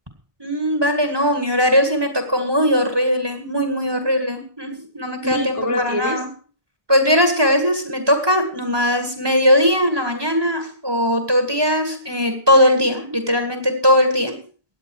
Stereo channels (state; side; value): late; left; 1.2 ms